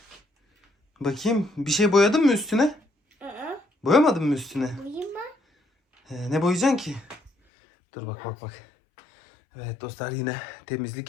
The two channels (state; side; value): drops out; right; at 7.3 s